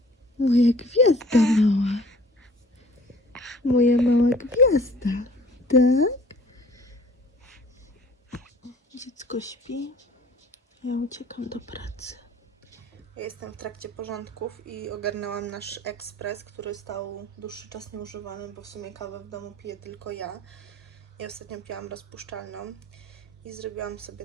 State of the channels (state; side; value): normal; both; correlation 0.51